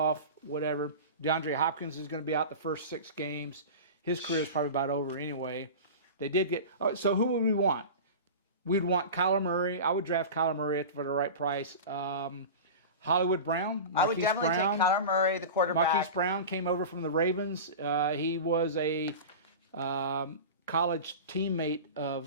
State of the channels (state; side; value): inverted; both; correlation -0.30